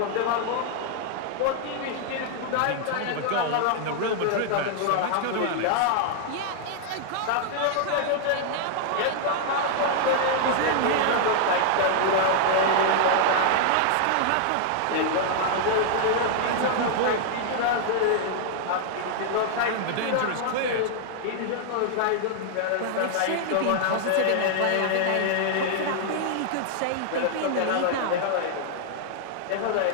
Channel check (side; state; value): both; different; correlation -0.01